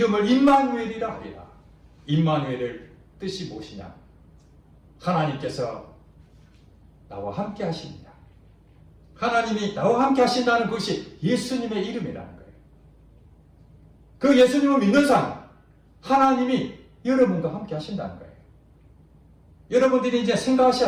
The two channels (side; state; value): both; identical; correlation 1.00